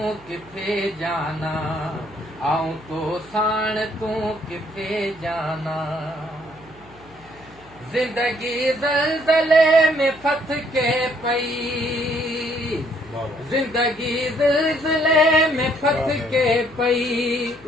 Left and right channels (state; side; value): noise; left; hum, 25 dB below the sound